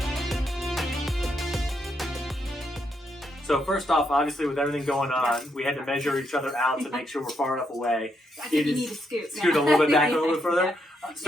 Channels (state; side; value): normal; both; correlation 0.78